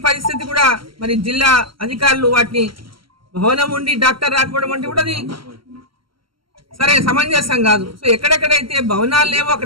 పరిస్థితి కూడా మరి జిల్లా అధికారులు వాటిని భవనం ఉండి డాక్టర్ రాకపోవడం అంటే కూడా అది సరే సమంజసం కాదు. సో ఎక్కడెక్కడైతే భవనాలు లేవో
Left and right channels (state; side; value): late; left; 0.74 ms